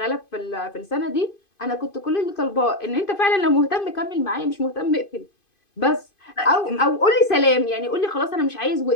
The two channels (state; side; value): late; right; 2.5 ms